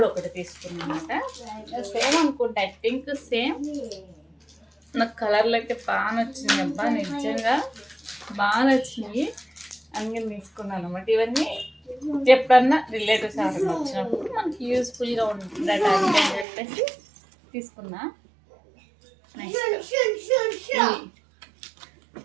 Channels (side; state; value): left; drops out; at 16.4 s